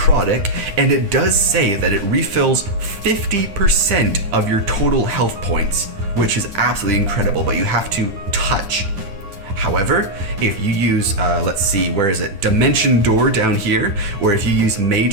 and it does say that it refills 50% of your total health points, which is absolutely incredible, but you have to touch. However, if you use, let's see, where is it? Dimension Door down here, or if you use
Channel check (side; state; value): left; late; 9.9 ms